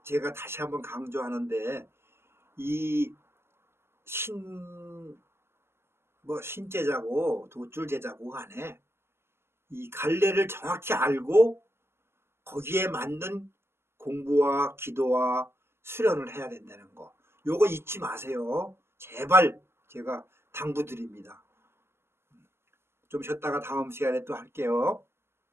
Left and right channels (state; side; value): late; left; 0.12 ms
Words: 제가 다시 한번 강조하는데 이 신제자고 도줄제자고 간에 이 갈래를 정확히 알고 거기에 맞는 공부와 기도와 수련을 해야 된다는 거. 요거 잊지 마세요. 제발 제가 당부드립니다. 좀 쉬었다가 다음 시간에 또 할게요.